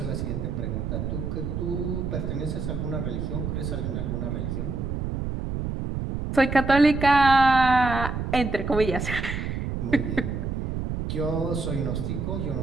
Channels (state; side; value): noise; right; rumble, 3 dB below the sound